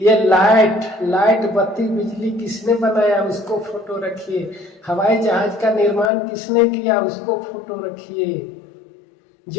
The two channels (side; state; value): right; drops out; at 6.1 s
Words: लाइट बत्ती बिजली किसने बनाया उसको फोटो रखिए। हवाई जहाज का निर्माण किसने किया उसको फोटो रखिए।